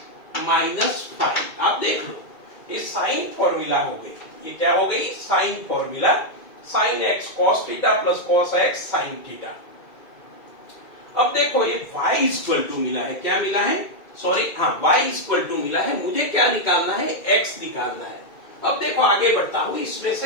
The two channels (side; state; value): right; late; 2.2 ms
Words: -5। आप देख लो ये साइन फॉर्मूला हो गई, ये क्या हो गई sine formula, sine x cos theta plus cos x sin theta. अब देखो ये y इक्वल टू मिला है, क्या मिला है सॉरी हाँ y इक्वल टू मिला है, मुझे क्या निकालना है x निकालना है। अब देखो आगे बढ़ता हूं इसमें